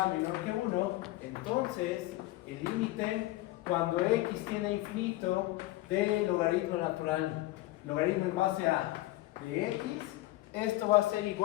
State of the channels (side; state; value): right; quieter; 17.7 dB